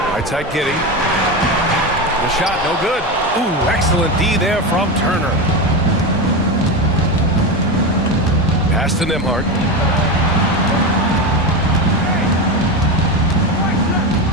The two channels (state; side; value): normal; both; correlation 0.18